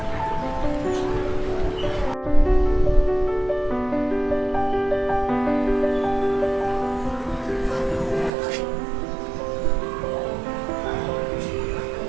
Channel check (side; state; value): left; drops out; at 8.3 s